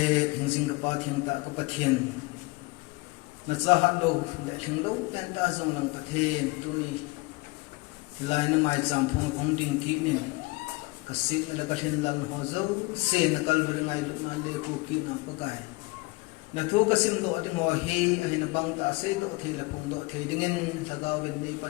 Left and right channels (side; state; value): right; quieter; 24.1 dB